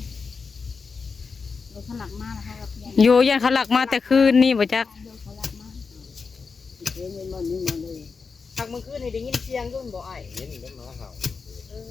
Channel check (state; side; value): quieter; right; 5.0 dB